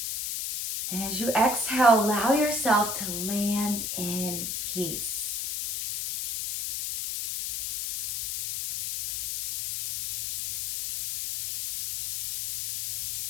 And as you exhale, allow yourself to land in peace.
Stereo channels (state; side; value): noise; left; hiss, 4 dB below the sound